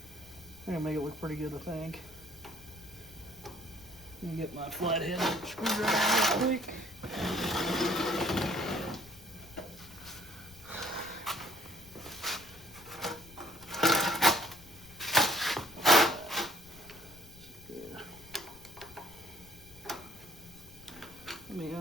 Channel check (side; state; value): left; noise; rumble, 22 dB below the sound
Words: I'm going to make it look pretty good, I think. Let me get my flathead screwdriver real quick. Let me